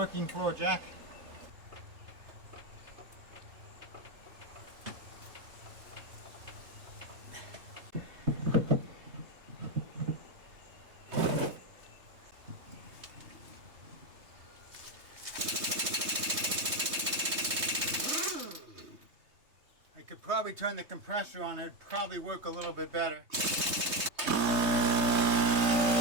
floor jack. I could probably turn the compressor on, it'd probably work a little bit better.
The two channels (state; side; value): late; left; 3.2 ms